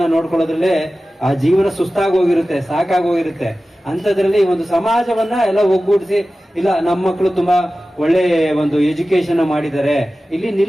ನೋಡ್ಕೊಳ್ಳೋದ್ರಲ್ಲೇ ಆ ಜೀವನ ಸುಸ್ತಾಗೋಗಿರುತ್ತೆ, ಸಾಕಾಗೋಗಿರುತ್ತೆ. ಅಂಥದ್ರಲ್ಲಿ ಒಂದು ಸಮಾಜವನ್ನ ಎಲ್ಲ ಒಗ್ಗೂಡಿಸಿ, ಇಲ್ಲ ನಮ್ಮ ಮಕ್ಕಳು ತುಂಬಾ ಒಳ್ಳೆ ಒಂದು ಎಜುಕೇಶನ್ ಮಾಡಿದ್ದಾರೆ, ಇಲ್ಲಿ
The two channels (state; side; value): normal; both; correlation 0.95